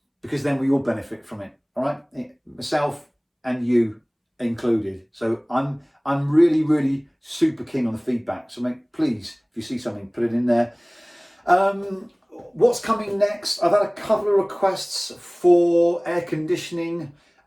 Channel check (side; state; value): both; identical; correlation 1.00